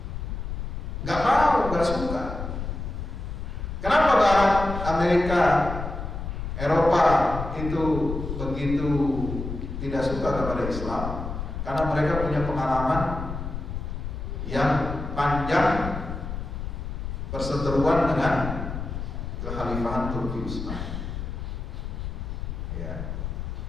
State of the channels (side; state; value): left; noise; rumble, 6 dB below the sound